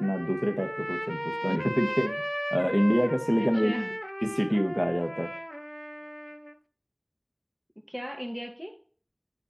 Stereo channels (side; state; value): both; identical; correlation 1.00